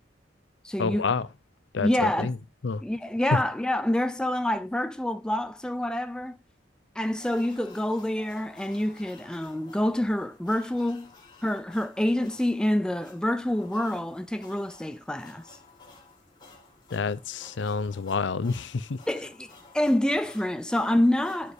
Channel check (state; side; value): normal; both; correlation 0.83